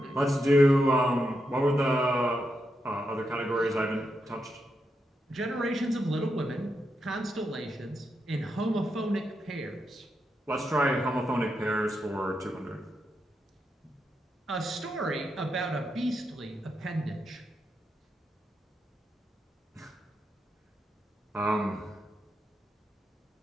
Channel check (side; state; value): both; normal; correlation 0.84